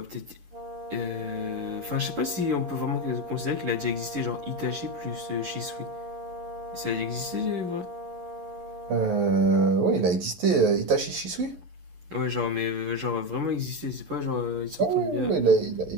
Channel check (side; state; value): left; late; 11 ms